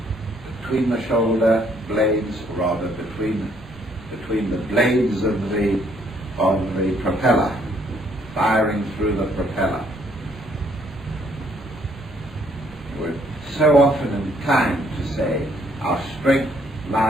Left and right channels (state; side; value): normal; both; correlation 0.67